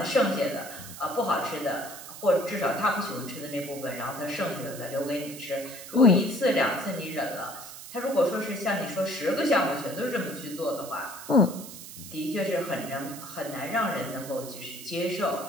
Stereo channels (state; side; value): noise; right; hiss, 13 dB below the sound